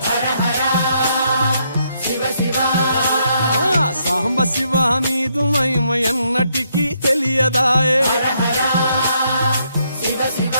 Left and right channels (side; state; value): both; inverted; correlation -0.75